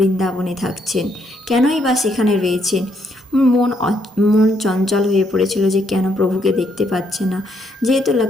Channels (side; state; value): both; normal; correlation 0.73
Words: থাকছেন, কেনই বা সেখানে রয়েছেন। মন চঞ্চল হয়ে পড়েছিল যে কেন প্রভুকে দেখতে পাচ্ছে না। যেহেতু